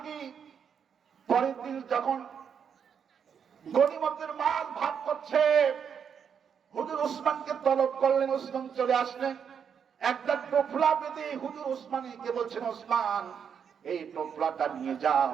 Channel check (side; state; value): left; quieter; 7.4 dB